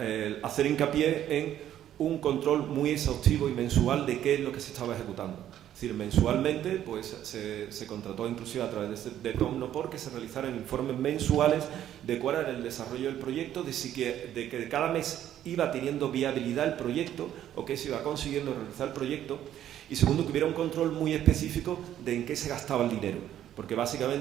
hacer hincapié en un control muy exhaustivo y mensual de qué es lo que se estaba ejecutando. Es decir, mensualmente pues, se contrató inclusive a través de Tecnopor que se realizaran informes mensuales de cuál era el desarrollo del proyecto, de que cada mes iba teniendo viabilidad el proyecto o que se iba consiguiendo realizar el proyecto. Y segundo, que hubiera un control muy específico de en qué se gastaba el dinero, porque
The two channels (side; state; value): left; quieter; 11.4 dB